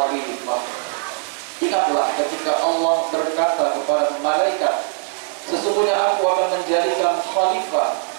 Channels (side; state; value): left; silent; 61 dB below the other